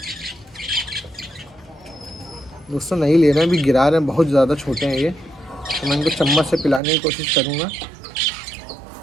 दोस्तों नहीं ले रहे हैं, अभी गिरा रहे हैं, बहुत ज़्यादा छोटे हैं ये। तो मैं इनको चम्मच से पिलाने की कोशिश करूँगा।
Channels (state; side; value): drops out; left; at 6.8 s